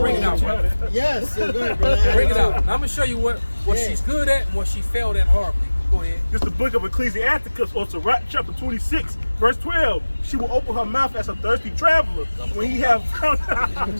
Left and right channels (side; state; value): both; inverted; correlation -1.00